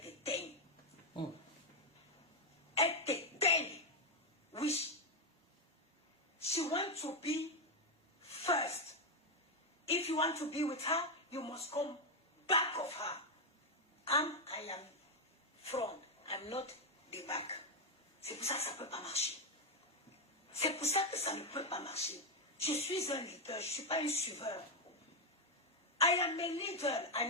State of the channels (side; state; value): both; normal; correlation 0.03